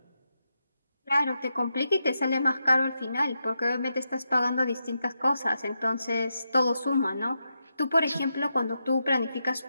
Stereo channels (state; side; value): inverted; both; correlation -0.86